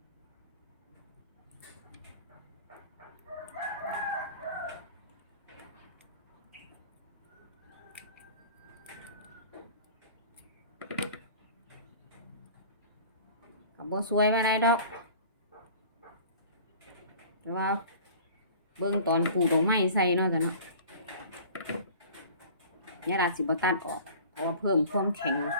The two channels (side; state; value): both; inverted; correlation -0.44